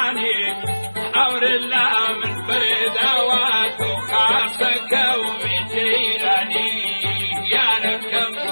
اور الله من فردوات وخاصك ومجيراني يا ركم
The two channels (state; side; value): inverted; both; correlation -1.00